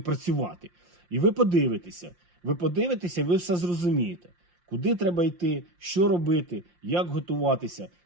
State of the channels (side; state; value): left; late; 5.7 ms